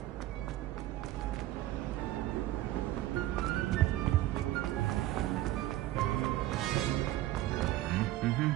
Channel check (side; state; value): left; quieter; 15.1 dB